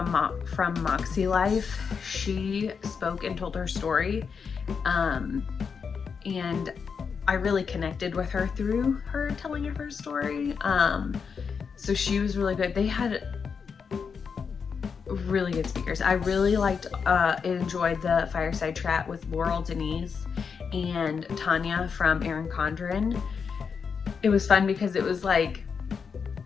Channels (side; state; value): right; quieter; 6.0 dB